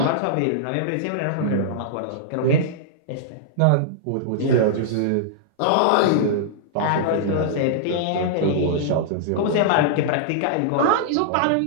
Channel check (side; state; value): both; different; correlation -0.02